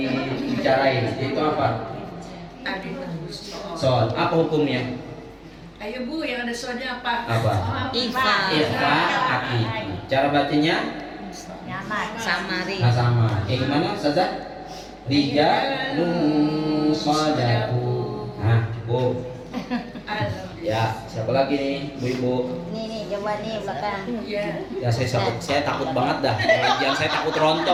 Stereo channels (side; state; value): both; identical; correlation 1.00